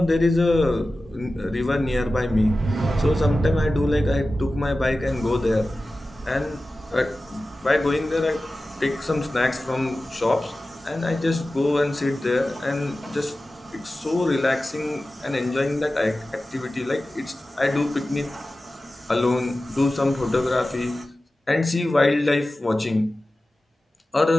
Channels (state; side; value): normal; both; correlation 0.95